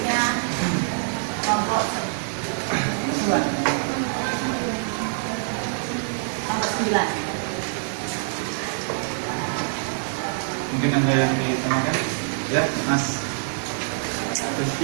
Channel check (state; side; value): silent; left; digital silence